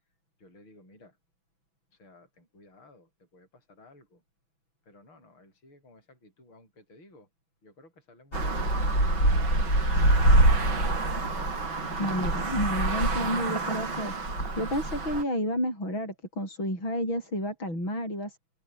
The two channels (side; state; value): right; late; 6.1 ms